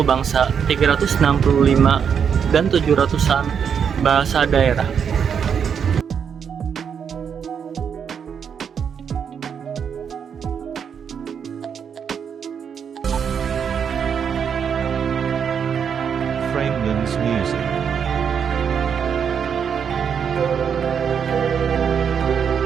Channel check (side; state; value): left; quieter; 7.3 dB